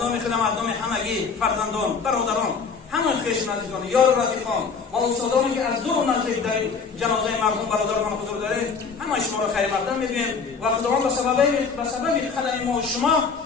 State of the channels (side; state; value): right; quieter; 5.3 dB